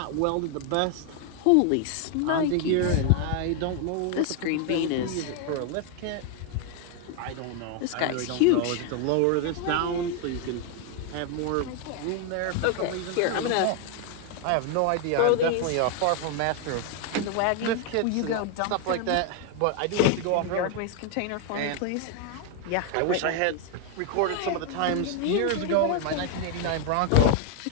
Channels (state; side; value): different; both; correlation 0.00